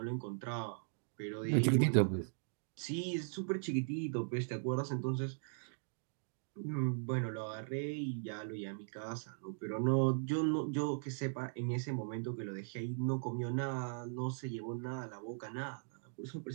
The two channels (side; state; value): left; silent; digital silence